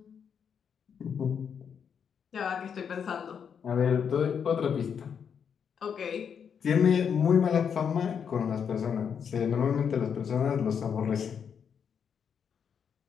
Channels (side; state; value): right; quieter; 7.3 dB